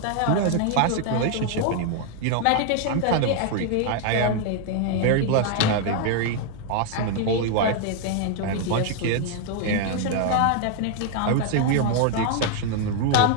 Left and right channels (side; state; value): both; different; correlation 0.00